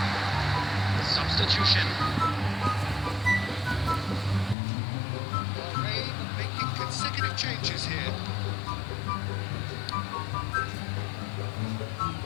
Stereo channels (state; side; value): drops out; right; at 4.5 s